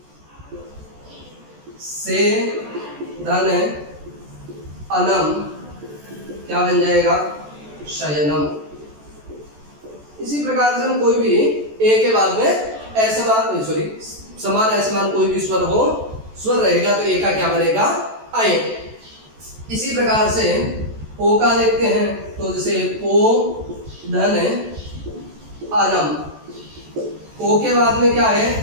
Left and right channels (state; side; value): late; left; 14 ms